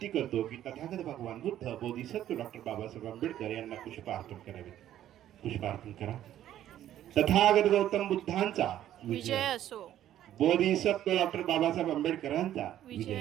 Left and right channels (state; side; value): quieter; left; 12.0 dB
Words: करतो की तथागत भगवान बुद्ध बोधिसत्व डॉक्टर बाबासाहेब आंबेडकर यांना पुष्पार्पण करावे। पुष्पार्पण करा। तथागत गौतम बुद्धांचा विजय असो, बोधिसत्व डॉक्टर बाबासाहेब आंबेडकरांचा